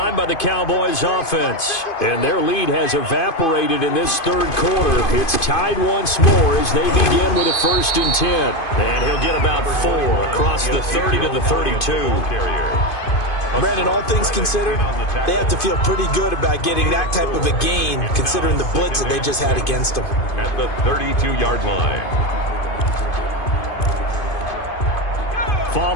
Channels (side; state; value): right; late; 2.5 ms